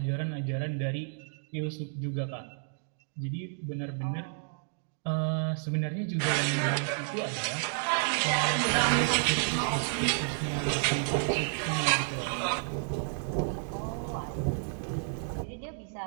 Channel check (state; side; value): silent; left; digital silence